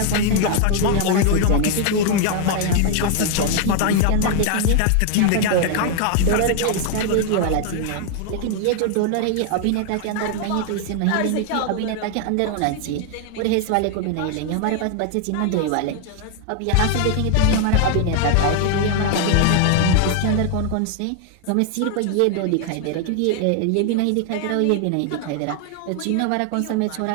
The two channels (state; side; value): different; both; correlation 0.00